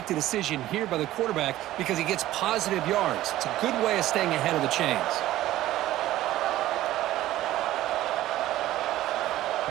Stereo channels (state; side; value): quieter; left; 14.8 dB